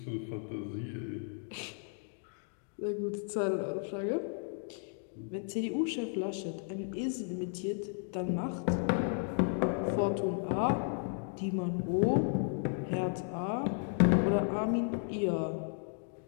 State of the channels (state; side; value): silent; right; 55 dB below the other